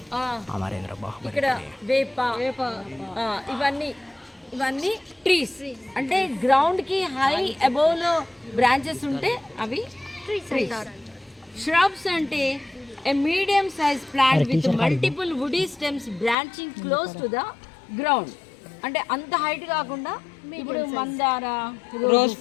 ఇక్కడ వేప, ఇవన్నీ ట్రీస్. అంటే గ్రౌండ్కి హై అబౌవ్లో బ్రాంచెస్ ఉంటే అవి ట్రీస్. shrubs అంటే a medium sized plant with multiple woody stems branching close to the ground. అంటే అంత హైట్ కాకుండా, ఇప్పుడు మందార, రోజ్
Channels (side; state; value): right; drops out; at 16.4 s